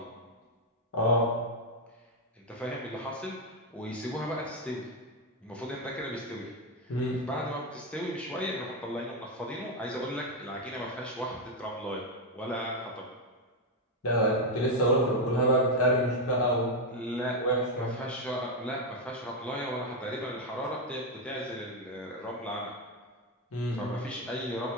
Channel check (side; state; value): both; normal; correlation 0.04